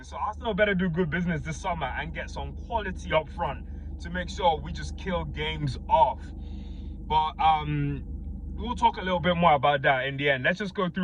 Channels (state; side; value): identical; both; correlation 1.00